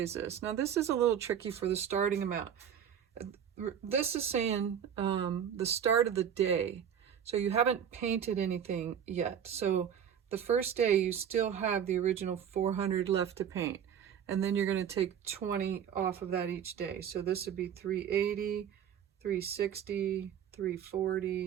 this? Now this is a little tricky for the starting amount. This is saying the start of the day. So you haven't painted anything yet. So the first day you still have the original 400 left to paint. And then you're going to take 20 off of that each day. So this would be 380, 360,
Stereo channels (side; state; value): left; quieter; 8.7 dB